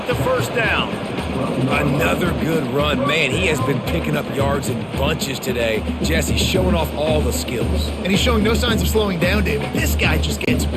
the first down. Another good run. Man, he has been picking up yards in bunches today. Jesse's showing off all the skills. And he's showing no signs of slowing down, David. This guy just gets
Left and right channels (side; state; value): both; identical; correlation 1.00